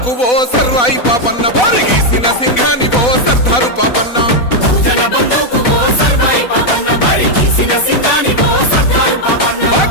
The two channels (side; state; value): right; late; 4.1 ms